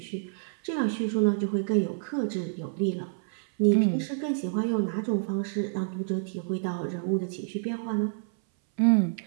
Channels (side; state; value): left; silent; 59 dB below the other